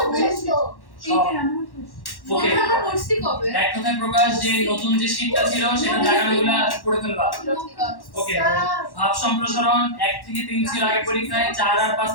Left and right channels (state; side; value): late; right; 1.1 ms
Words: ওকে, এক কথায় প্রকাশ যে নতুন যে শীটটা ছিল সেটা জায়গাগুলো পড়ে ফেলবা। ওকে, ভাব সম্প্রসারণ 1 থেকে 3 ছিল আগে পরীক্ষায়, 4 আর 5